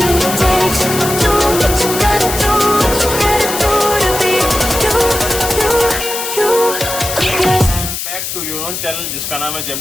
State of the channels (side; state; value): left; noise; hiss, 5 dB below the sound